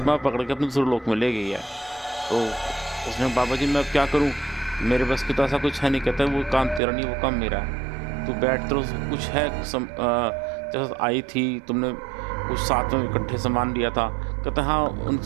पकड़ के अपने दूसरे लोक में ले गई है। तो उसने बाबा जी मैं अब क्या करूं, मेरे बस की तो ऐसा कुछ है नहीं। कहता है वो काम तेरा नहीं, वो काम मेरा है, तू बैठ, तो कुछ है जैसे आई थी तुमने कुछ साथ में इकट्ठे सामान लिया था। कहता हाँ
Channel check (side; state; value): left; drops out; at 6.8 s